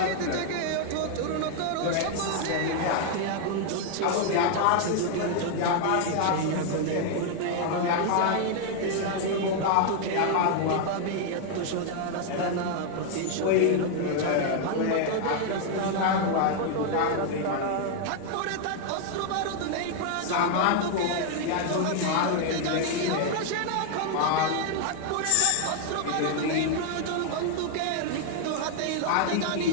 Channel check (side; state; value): both; different; correlation 0.00